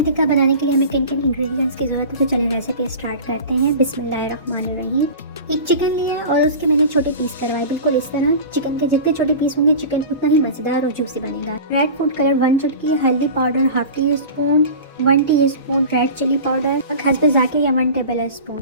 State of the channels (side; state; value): both; inverted; correlation -0.35